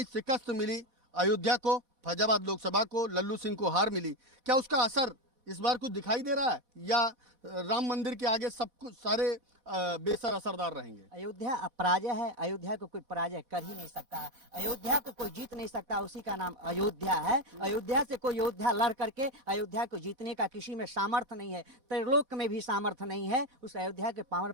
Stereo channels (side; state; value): left; late; 4.2 ms